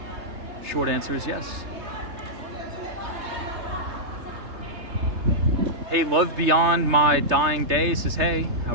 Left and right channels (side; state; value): left; late; 3.4 ms